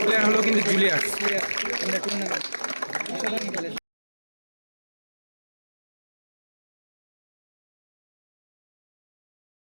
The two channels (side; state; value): both; inverted; correlation -1.00